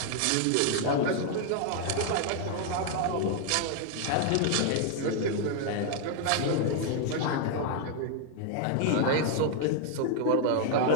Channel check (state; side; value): different; both; correlation 0.00